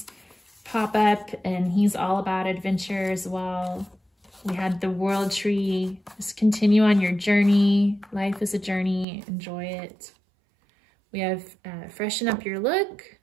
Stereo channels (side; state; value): left; drops out; at 9.1 s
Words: pop up, and he's all about adventure as well. We had the World Tree. Just continue on your journey. Life is a journey. Enjoy it. We have freshen up your look.